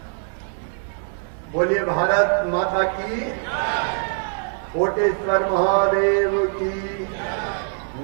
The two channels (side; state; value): left; silent; 63 dB below the other